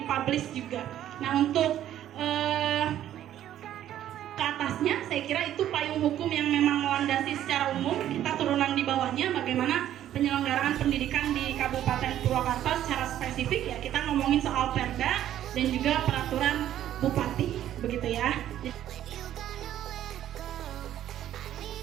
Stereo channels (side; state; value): left; quieter; 11.7 dB